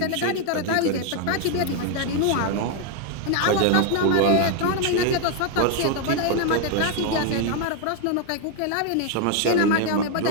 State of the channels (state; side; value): different; both; correlation 0.01